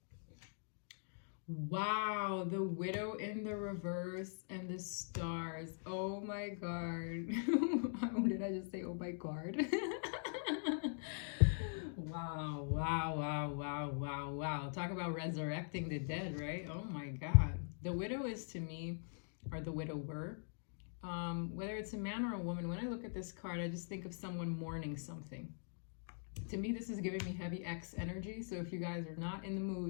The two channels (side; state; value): right; silent; digital silence